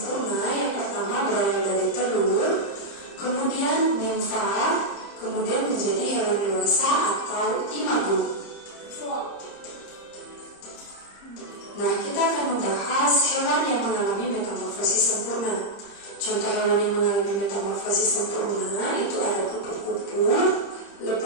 yang pertama berawal dari telur, kemudian nimfa, kemudian menjadi hewan dewasa atau imago. Nah, kita akan membahas hewan yang mengalami metamorfosis sempurna. Contoh hewan yang mengalami metamorfosis sempurna itu ada kupu-kupu,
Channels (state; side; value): late; right; 30 ms